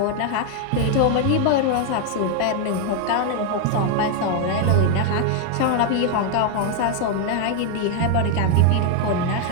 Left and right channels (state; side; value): different; both; correlation 0.00